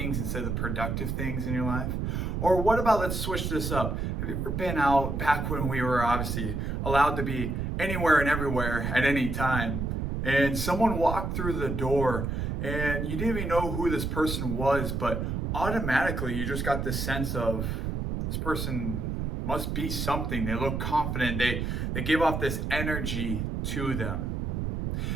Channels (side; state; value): right; noise; rumble, 2 dB below the sound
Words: instead of the productive things in your life? Or what about, let's switch this up. Have you ever been out back when we were obviously allowed to be anywhere and everywhere at any time, and someone walked through the door and you didn't even know who this person was, but automatically you just got this sense of this person must be something. They look confident. They give off this energy to them.